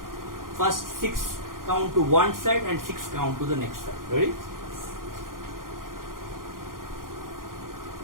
First 6 count to one side and 6 count to the next side. Ready?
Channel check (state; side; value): late; left; 0.91 ms